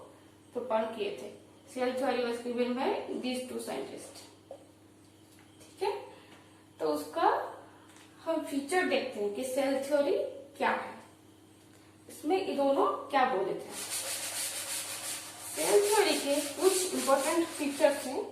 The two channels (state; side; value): identical; both; correlation 1.00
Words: प्रोपोज किए थे। Cell theory was given by these two scientists. ठीक है, तो उसका हम फीचर देखते हैं कि सेल थ्योरी क्या है, इसमें ये दोनों क्या बोले थे। सेल थ्योरी के कुछ इंपॉर्टेंट फीचर्स हैं,